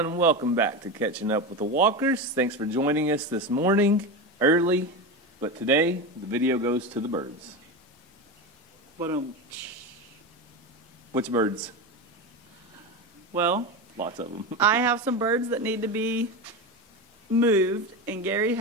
welcome back to Catching Up with the Walkers. Thanks for joining us this morning, early, but today the video goes to the birds. Which birds? Well, lots of them. I have some birds that need to be moved, and Gary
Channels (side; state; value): both; normal; correlation 0.20